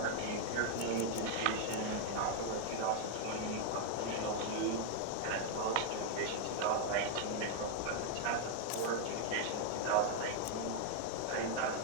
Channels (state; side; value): different; both; correlation 0.00